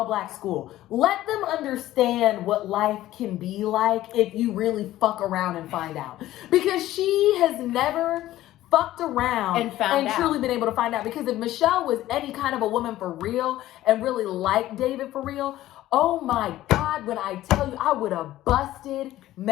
school. Let them understand what life can be like if you really fuck around and find out. Because she has never fucked around and truly been able to find out. Because if Michelle was any kind of a woman for real and really liked David for real, oh my God, when I tell you, I would have busted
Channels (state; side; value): quieter; right; 14.7 dB